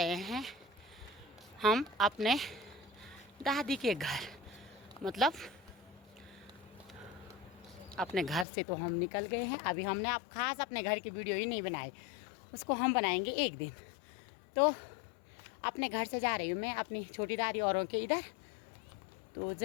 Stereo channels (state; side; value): drops out; right; at 8.5 s